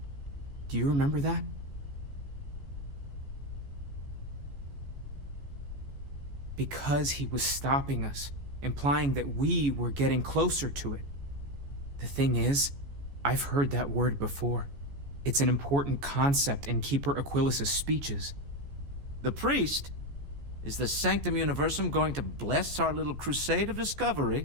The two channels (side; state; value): left; late; 14 ms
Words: Do you remember that? Because he was stopping us, implying that we were getting closer to it. The thing is, I've heard that word before. It's an important concept in Keeper Aquilas's speeches. The priest? Is the Sanctum Universum going to bless our little crusade of discovery?